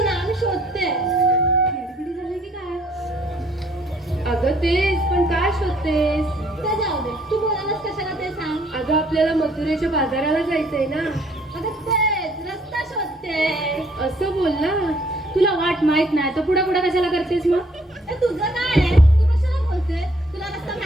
ना मी शोधते. खिडखिडी झाली की काय? अगं तेच पण काय शोधतेस? ते जाऊ दे तू बोलायलाच कशाला ते सांग. अगं आपल्याला मथुरेच्या बाजाराला जायचंय ना. अगं तेच रस्ता शोधते. असं बोल ना. तुला वाट माहित नाही तर पुढे पुढे कशाला करतेस मग? तुझं काय आहे? तू कशाला बोलते? तुला रस्ता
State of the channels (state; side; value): normal; both; correlation 0.63